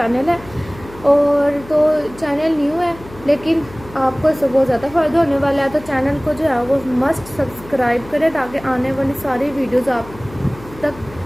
है। और तो चैनल न्यू है लेकिन आपको इससे बहुत ज़्यादा फ़ायदा होने वाला है, तो चैनल को जो है वो मस्ट सब्सक्राइब करें ताकि आने वाली सारी वीडियोज़ आप तक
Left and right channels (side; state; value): left; noise; hum, 19 dB below the sound